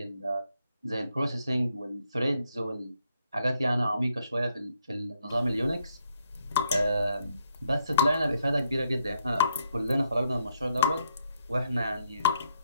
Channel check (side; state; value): both; inverted; correlation -0.76